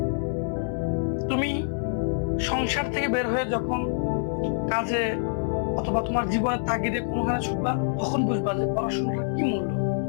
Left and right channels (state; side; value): silent; right; digital silence